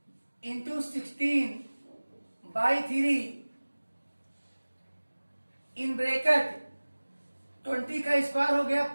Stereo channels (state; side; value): inverted; both; correlation -1.00